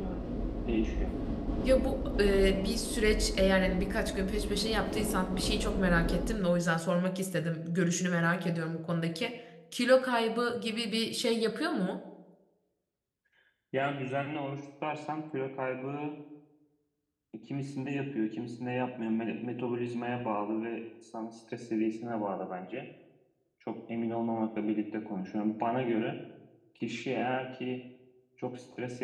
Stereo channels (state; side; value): identical; both; correlation 1.00